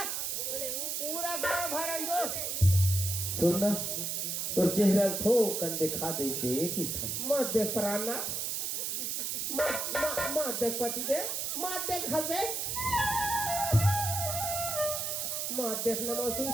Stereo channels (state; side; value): noise; right; hiss, 1 dB below the sound